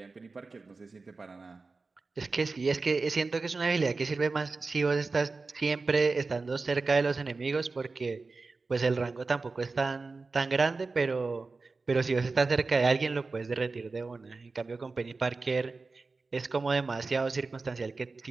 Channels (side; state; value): left; quieter; 3.9 dB